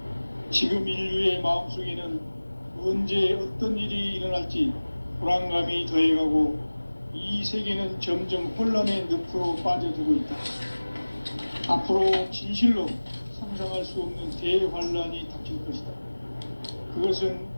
지금 인류의 마음속에는 언제 어떤 일이 일어날지 불안감이 더해가고 이 세계는 점점 혼란의 늪으로 빠져들고 있다. 앞으로 진실로 상상할 수 없는 대환란이 닥칠 것이다. 그것은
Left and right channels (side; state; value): both; inverted; correlation -1.00